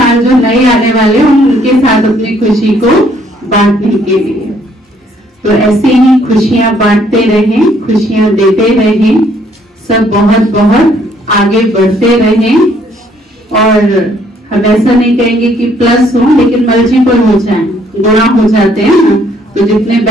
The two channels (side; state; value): both; normal; correlation 0.66